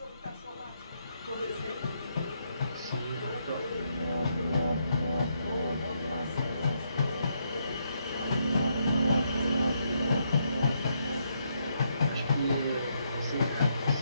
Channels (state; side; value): inverted; both; correlation -0.77